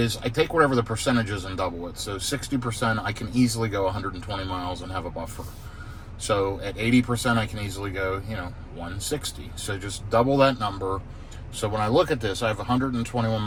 I take whatever the percentage is and double it. So 60%, I can easily go 120 miles and have a buffer. So at 80%, I can easily go, 160. So just double that number. So when I look at this, I have 121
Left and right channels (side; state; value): both; identical; correlation 1.00